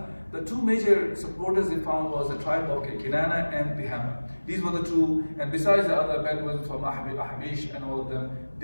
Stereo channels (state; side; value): inverted; both; correlation -1.00